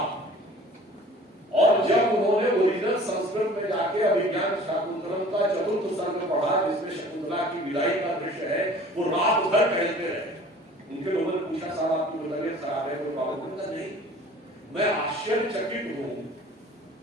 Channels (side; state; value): both; normal; correlation 0.47